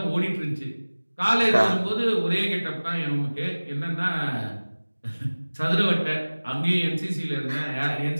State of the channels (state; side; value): inverted; both; correlation -1.00